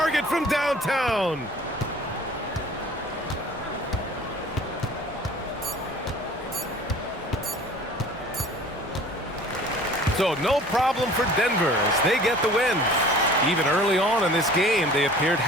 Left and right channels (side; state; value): both; normal; correlation 0.47